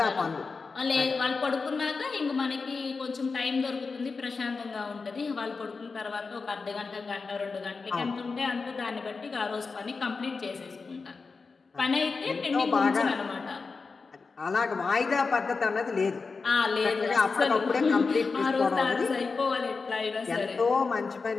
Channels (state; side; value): quieter; right; 4.5 dB